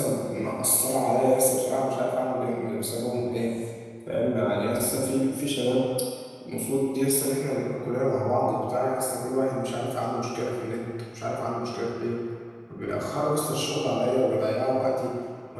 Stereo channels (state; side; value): identical; both; correlation 1.00